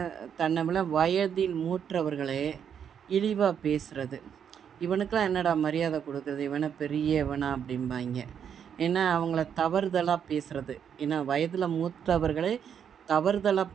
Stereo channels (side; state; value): left; quieter; 8.1 dB